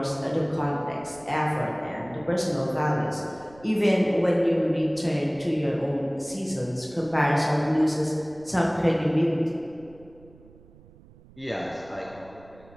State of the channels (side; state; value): right; noise; rumble, 24 dB below the sound